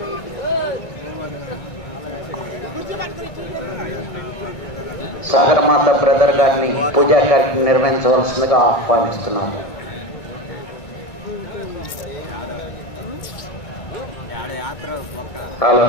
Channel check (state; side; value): late; right; 2.2 ms